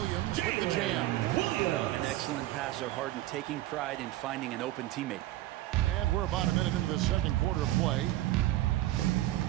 with the jam. An excellent passer, Harden taking pride in finding an open teammate. And we're about a minute into the second quarter of play.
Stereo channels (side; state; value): left; quieter; 15.8 dB